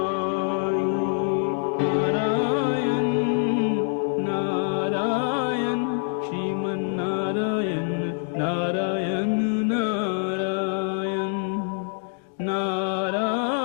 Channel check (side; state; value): right; silent; 62 dB below the other